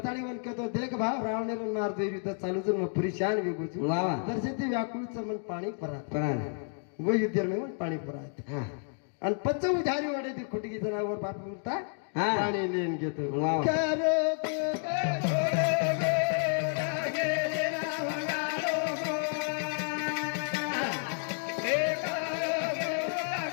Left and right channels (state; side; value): silent; right; 57 dB below the other